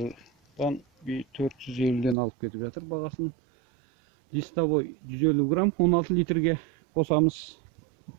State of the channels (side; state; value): left; drops out; at 2.1 s